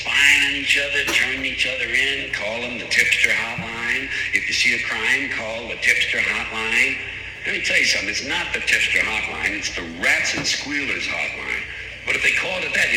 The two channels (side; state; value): both; identical; correlation 1.00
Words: on each other, turning each other in, call them the tipster hotline. If you see a crime, call the tipster hotline. Let me tell you something, it's not the tipster hotline, it's the rats and squealers hotline. But if they called it that,